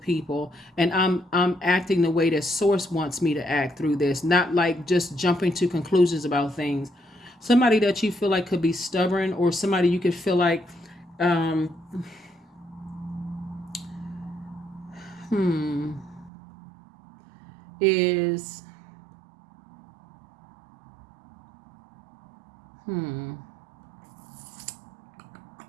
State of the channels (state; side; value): drops out; left; at 16.3 s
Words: and I'm acting the way that Source wants me to act through this, not like just jumping to conclusions about things. Somebody that you feel like could be stubborn, or somebody you could feel like is